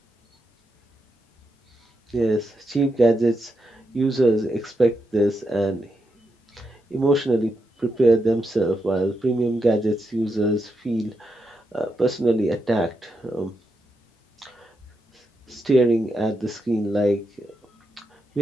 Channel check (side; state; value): both; normal; correlation 0.84